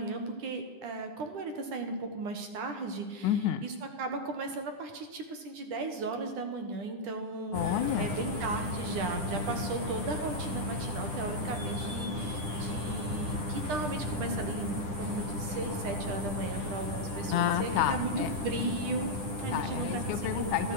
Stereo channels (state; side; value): late; left; 10 ms